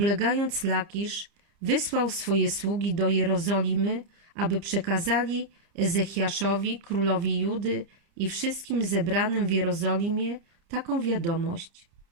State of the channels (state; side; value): late; left; 30 ms